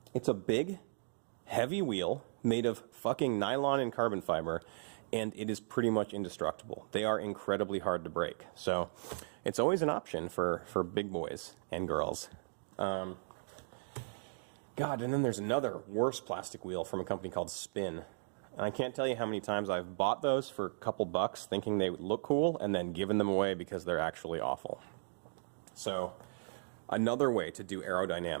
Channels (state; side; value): silent; left; digital silence